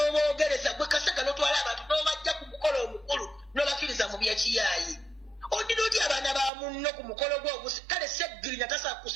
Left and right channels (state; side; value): drops out; left; at 6.5 s